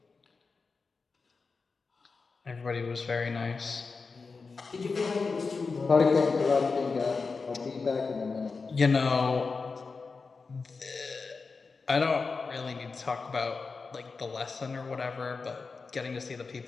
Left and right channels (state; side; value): quieter; right; 4.5 dB